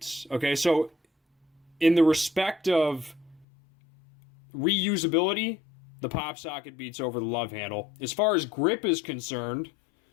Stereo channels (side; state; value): right; drops out; at 3.5 s